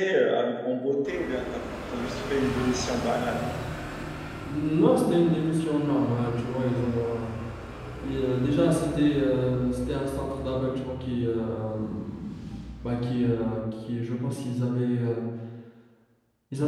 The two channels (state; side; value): identical; both; correlation 1.00